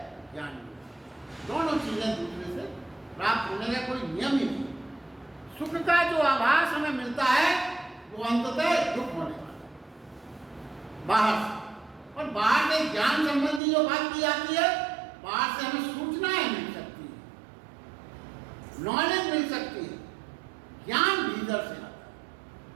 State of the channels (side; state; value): left; drops out; at 13.6 s